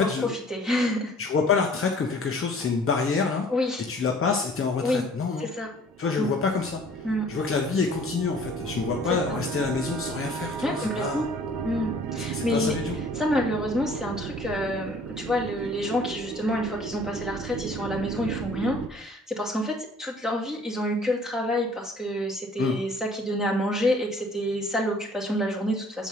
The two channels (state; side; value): normal; both; correlation 0.53